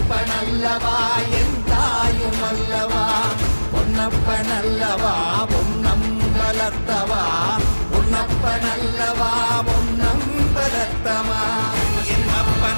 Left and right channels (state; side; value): inverted; both; correlation -1.00